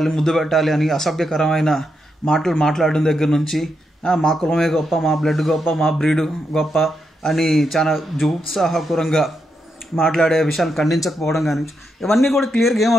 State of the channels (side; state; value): both; normal; correlation 0.82